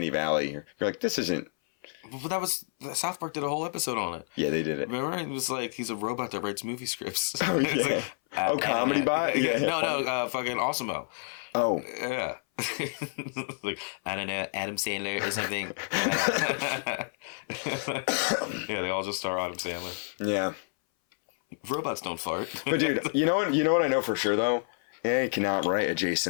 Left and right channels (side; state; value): right; silent; 58 dB below the other